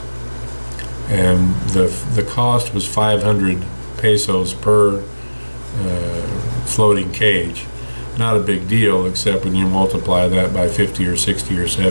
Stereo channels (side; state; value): both; inverted; correlation -1.00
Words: And the cost was 500 pesos per floating cage. Not a big deal, except when you multiply that by 50 or 60 or